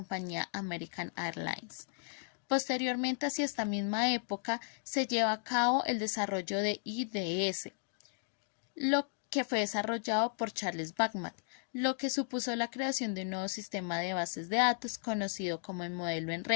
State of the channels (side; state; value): right; silent; digital silence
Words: American Airlines. Posteriormente, hacia esta misma época, se lleva a cabo el desarrollo de IDS, lo que fue desarrollado por Charles Babbage, lo que supuso la creación de un nuevo sistema de bases de datos conocido como el modelo en